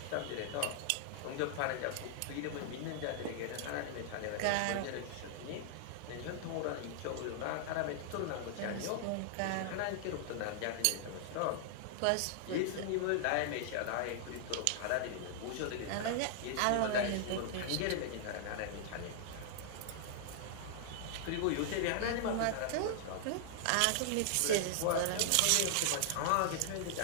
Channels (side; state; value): both; different; correlation -0.01